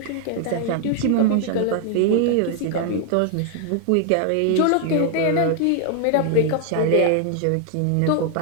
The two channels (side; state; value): both; different; correlation 0.00